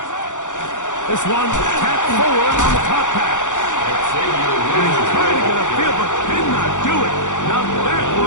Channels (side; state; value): right; late; 0.86 ms